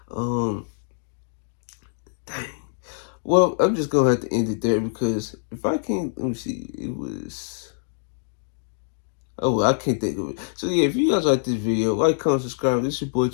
Um, dang. Well, I'm just gonna have to end it there because if I can't, let me see. It was. Oh, I can't think of it. So yeah, if you guys like this video, like, comment, subscribe. This is your boy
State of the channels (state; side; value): silent; right; digital silence